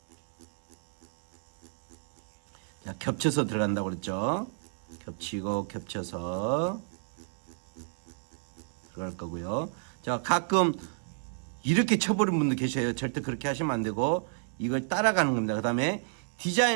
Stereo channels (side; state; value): left; silent; digital silence